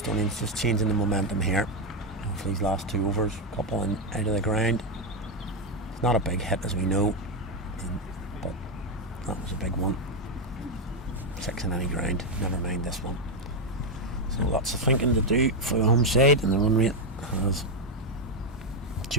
just changing the momentum here. For these last 2 overs, a couple in out of the ground. Not a big hit as we know, but that was a big one. 6 in any ground, never mind this one. So lots of thinking to do for the home side, and the run rate has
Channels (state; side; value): normal; both; correlation 0.05